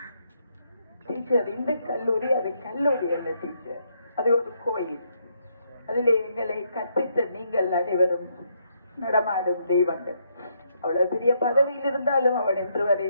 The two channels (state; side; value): inverted; both; correlation -0.75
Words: டீச்சர் இந்த கல்லூரி அது கல்லூரி அல்ல டீச்சர், அது ஒரு கோயில். அதிலே எங்களை கற்பித்த நீங்கள் அனைவரும் நடமாடும் தெய்வங்கள். அவ்வளவு பெரிய பதவியில் இருந்தாலும் அவன் என்று வரை